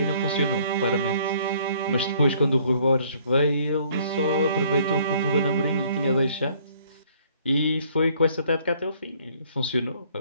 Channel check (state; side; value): inverted; both; correlation -0.61